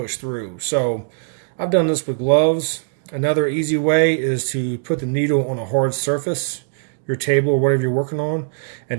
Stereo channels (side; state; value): left; silent; digital silence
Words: through. So I've done this with gloves. Another easy way is to put the needle on a hard surface, your table or whatever you're working on,